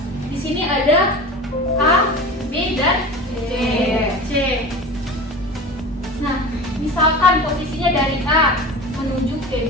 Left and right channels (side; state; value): both; normal; correlation 0.33